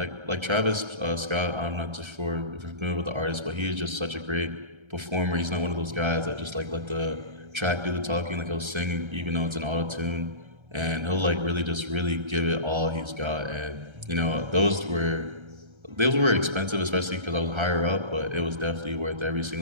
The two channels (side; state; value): left; late; 1.3 ms